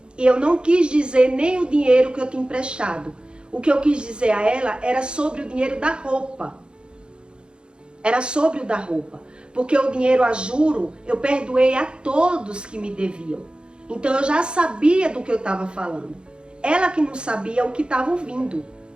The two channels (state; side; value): late; left; 0.053 ms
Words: E eu não quis dizer nem o dinheiro que eu tinha emprestado. O que eu quis dizer a ela era sobre o dinheiro da roupa. Era sobre o da roupa. Porque o dinheiro a juro, eu perdoei a todos que me deviam. Então eu já sabia do que eu estava falando. Ela que não sabia o que estava ouvindo.